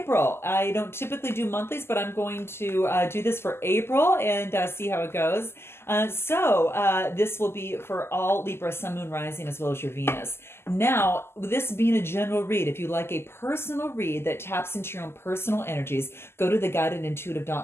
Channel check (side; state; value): right; late; 0.12 ms